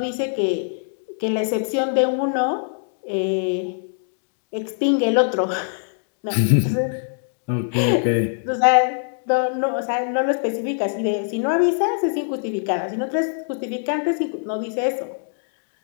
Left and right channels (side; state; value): right; silent; digital silence